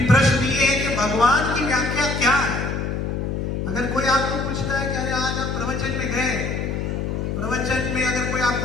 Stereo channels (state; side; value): noise; left; hum, 2 dB below the sound